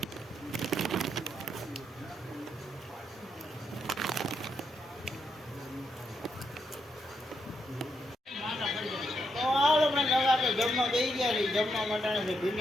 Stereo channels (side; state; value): both; normal; correlation 0.80